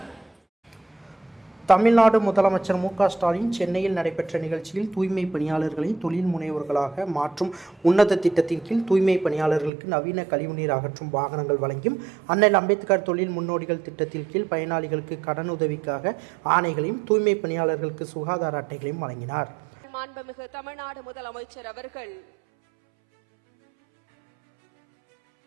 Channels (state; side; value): drops out; left; at 9.7 s